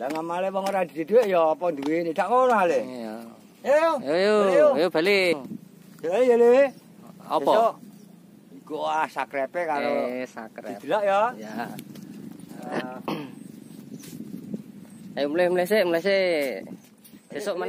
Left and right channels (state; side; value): identical; both; correlation 1.00